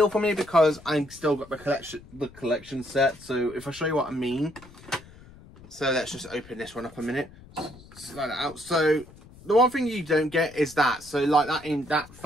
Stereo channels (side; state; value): left; noise; rumble, 21 dB below the sound